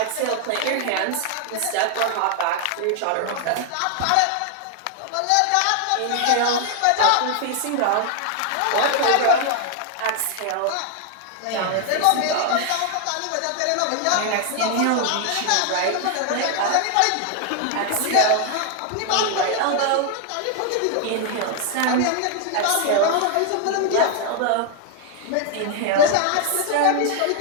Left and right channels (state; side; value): different; both; correlation 0.00